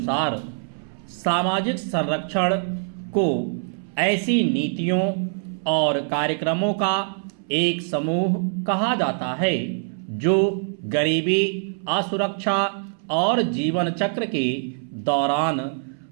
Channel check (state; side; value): silent; left; 62 dB below the other